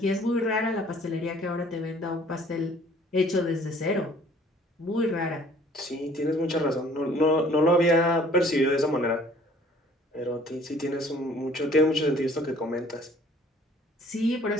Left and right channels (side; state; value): both; normal; correlation 0.55